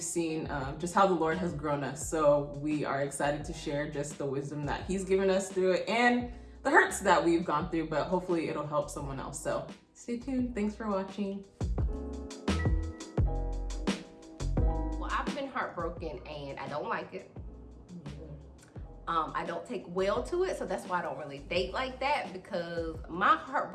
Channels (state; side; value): identical; both; correlation 1.00